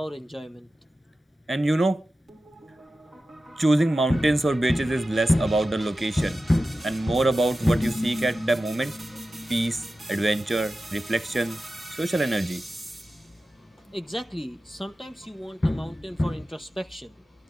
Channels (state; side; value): normal; both; correlation 0.94